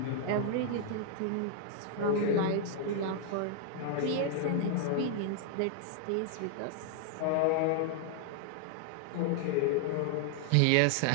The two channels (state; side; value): different; both; correlation 0.00